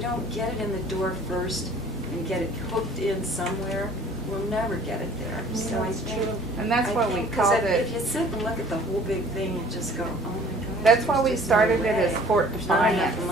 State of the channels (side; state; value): both; normal; correlation 0.52